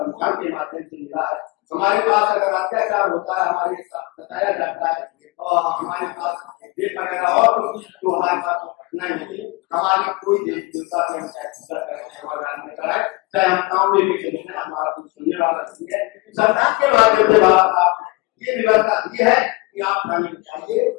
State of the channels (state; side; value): quieter; right; 24.5 dB